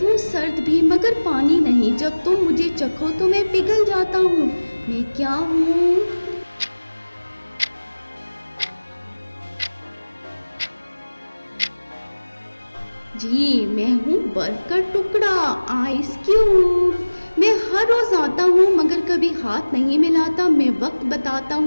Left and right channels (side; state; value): both; inverted; correlation -1.00